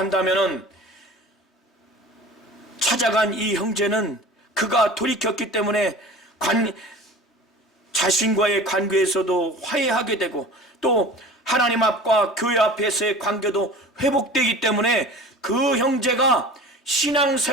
찾아간 이 형제는 그가 돌이켰기 때문에 자신과의 관계에서도 화해하게 되고 또 하나님 앞과 교회 앞에서의 관계도 회복되기 때문에 그 형제가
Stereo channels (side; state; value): both; normal; correlation 0.39